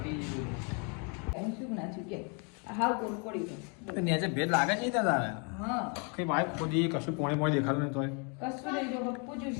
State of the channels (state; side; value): quieter; right; 35.9 dB